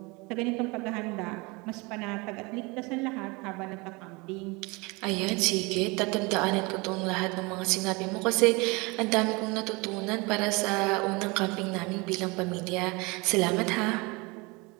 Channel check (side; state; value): left; quieter; 26.4 dB